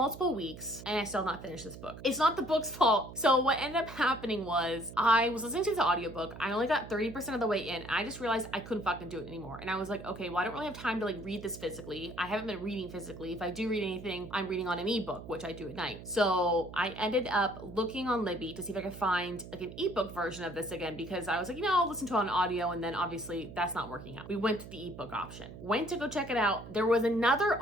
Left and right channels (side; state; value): right; noise; hum, 14 dB below the sound